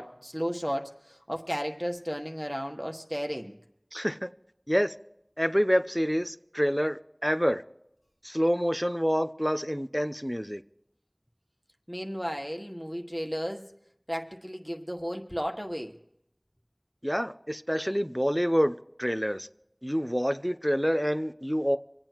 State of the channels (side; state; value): both; identical; correlation 1.00